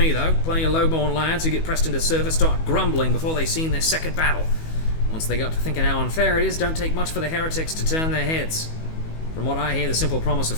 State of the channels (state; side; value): late; right; 19 ms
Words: though. Plenty of low-born lads who get pressed into service start grumbling before they've seen their second battle. Once they got to thinking how unfair it is, don't take much for the heretics to turn their heads. From what I hear, the simple promise of